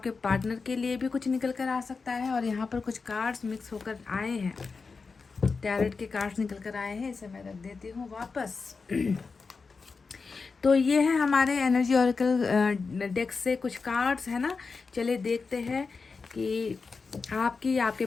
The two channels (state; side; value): quieter; right; 4.6 dB